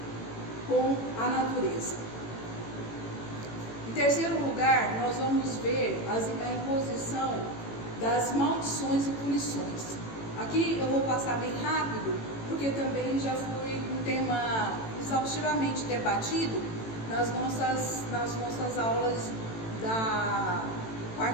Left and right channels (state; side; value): late; right; 18 ms